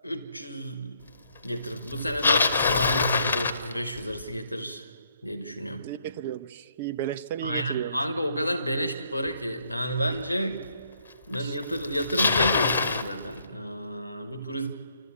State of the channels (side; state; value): both; inverted; correlation -0.69